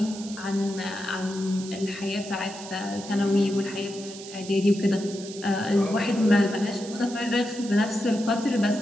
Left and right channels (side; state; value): right; noise; hiss, 14 dB below the sound